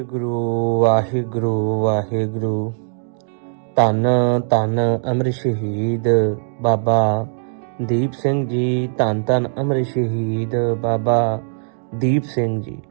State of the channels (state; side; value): silent; left; digital silence